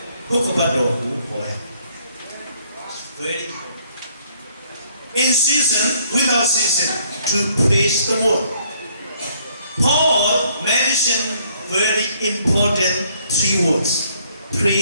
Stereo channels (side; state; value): both; inverted; correlation -0.65